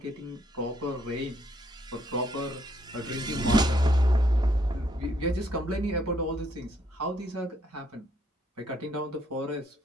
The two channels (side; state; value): both; normal; correlation 0.70